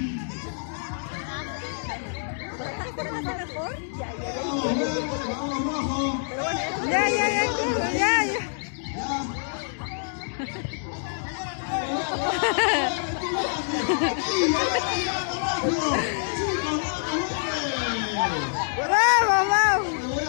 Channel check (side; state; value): right; silent; digital silence